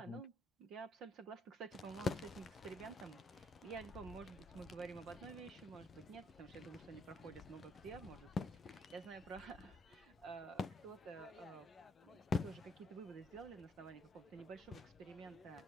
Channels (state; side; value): normal; both; correlation 0.71